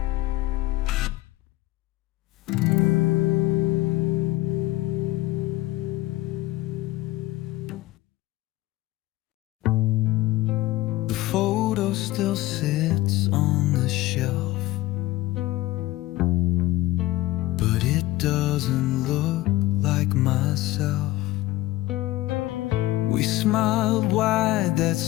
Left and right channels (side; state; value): right; quieter; 17.5 dB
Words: The photo still sits on the shelf, but it doesn't look like myself. We smiled wide that